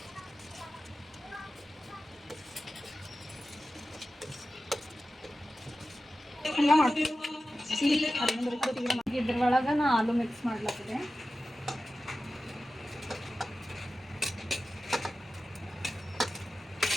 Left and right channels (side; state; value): both; normal; correlation 0.94